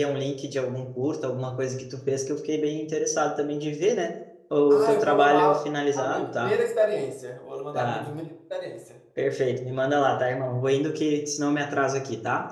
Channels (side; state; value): both; identical; correlation 1.00